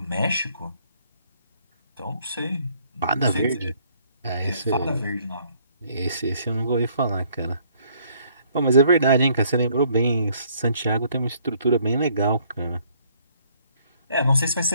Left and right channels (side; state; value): both; inverted; correlation -0.64